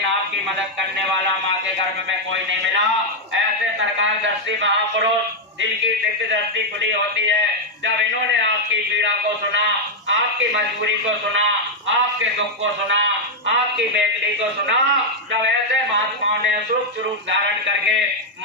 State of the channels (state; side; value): normal; both; correlation -0.01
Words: आपकी मदद करने वाला माँ के गर्भ में कोई नहीं मिला। ऐसे सरकार दृष्टि महापुरुष जिनकी दिव्य दृष्टि खुली होती है, जब इन्होंने आपकी पीड़ा को सुना, आपकी मजबूरी को सुना, आपके दुख को सुना, आपकी बेदली को सुना, जब ऐसे महात्माओं ने सूक्ष्म रूप धारण करके